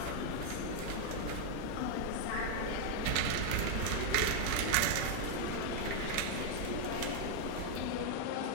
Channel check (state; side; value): different; both; correlation 0.00